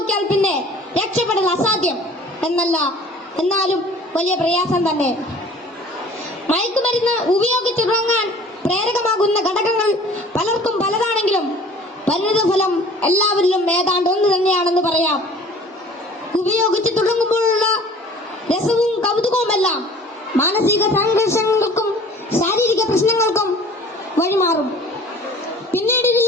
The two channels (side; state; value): both; normal; correlation 0.48